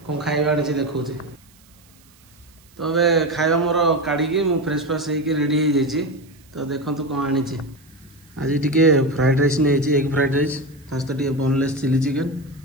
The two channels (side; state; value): right; noise; hiss, 29 dB below the sound